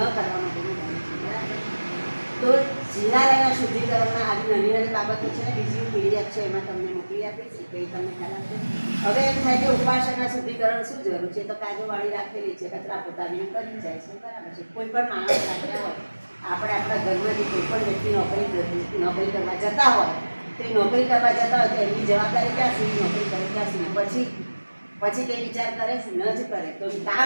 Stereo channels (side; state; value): both; inverted; correlation -1.00